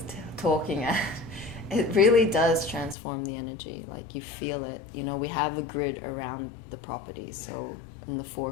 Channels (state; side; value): drops out; right; at 3.0 s